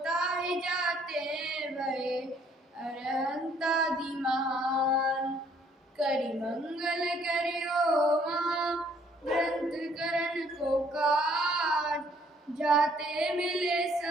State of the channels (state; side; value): normal; both; correlation 0.63